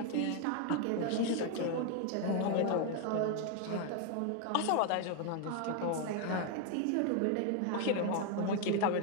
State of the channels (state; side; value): different; both; correlation 0.01